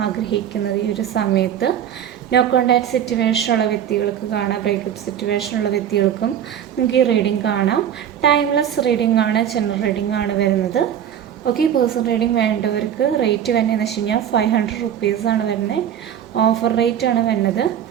ആഗ്രഹിക്കുന്നത് ഈ ഒരു സമയത്ത്. നോ കോണ്ടാക്ട് സിറ്റുവേഷനുള്ള വ്യക്തികൾക്ക് കാണാം, ബ്രേക്കപ്പ് സിറ്റുവേഷനുള്ള വ്യക്തികൾക്കും നിങ്ങൾക്ക് ഈ റീഡിംഗ് കാണാം. ടൈംലെസ് റീഡിംഗ് ആണ്, ജനറൽ റീഡിംഗ് ആണ് വരുന്നത്. ഓക്കെ, പേഴ്സണൽ റീഡിംഗ് വേണ്ടവർക്ക് റേറ്റ് വരുന്നതെന്ന് വെച്ച് കഴിഞ്ഞാൽ 500 റുപ്പീസാണ് വരുന്നത്. ഓഫർ റേറ്റ് ആണ് വരുന്നത്.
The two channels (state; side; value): quieter; left; 9.6 dB